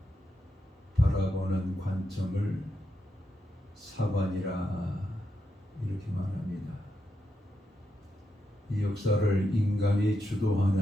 바라보는 관점을 사관이라 이렇게 말합니다. 이 역사를 인간이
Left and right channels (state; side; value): normal; both; correlation 0.84